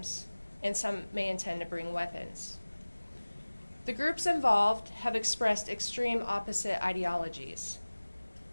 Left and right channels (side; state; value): both; inverted; correlation -1.00